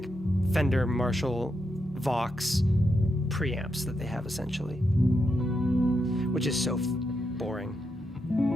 Fender, Marshall, Vox preamps that they have essentially, which is so boring.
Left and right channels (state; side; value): normal; both; correlation 0.84